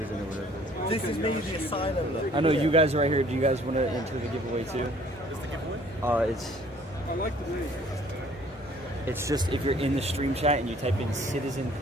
or whatever. This is me, the asylum. Look. I know you guys are right here. Do you guys want to enter the giveaway too? Is the giveaway? It's. I like the name. It's just if you're in the stream chat and you type in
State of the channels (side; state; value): left; noise; hum, 28 dB below the sound